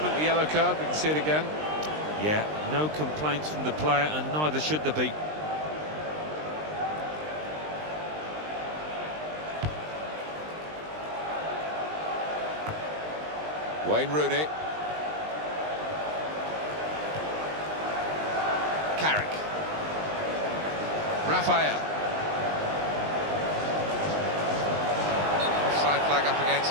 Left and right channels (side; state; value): left; late; 20 ms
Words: the yellow card, we can see it again. Yeah, no complaints from the player, and neither should there be. Wayne Rooney. Carrick. Raphael. Offside flag up against